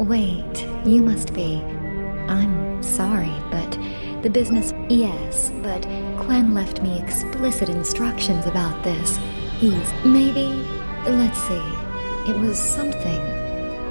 you must be... I'm sorry, but the business... Yes, but Quen left me explicit instructions about this. Maybe... Let's see. It was something...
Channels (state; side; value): inverted; both; correlation -1.00